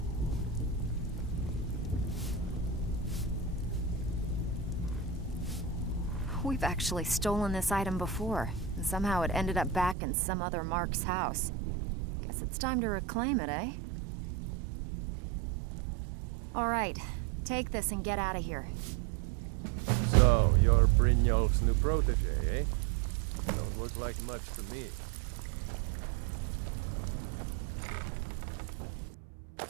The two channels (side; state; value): left; drops out; at 10.0 s